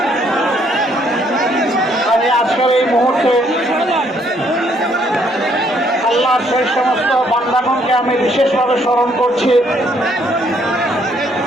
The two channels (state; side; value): normal; both; correlation 0.68